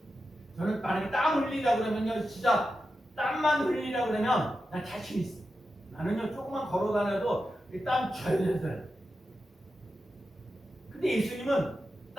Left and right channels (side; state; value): both; normal; correlation 0.90